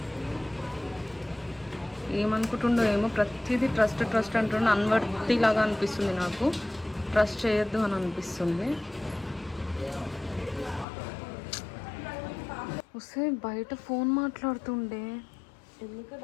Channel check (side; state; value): right; drops out; at 10.9 s